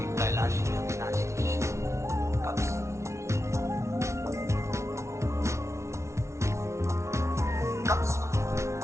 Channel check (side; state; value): left; late; 0.13 ms